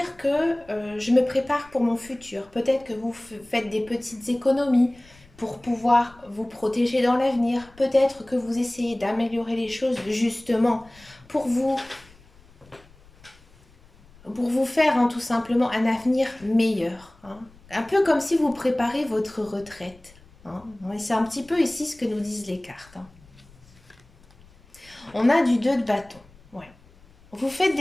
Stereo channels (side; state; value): left; noise; rumble, 27 dB below the sound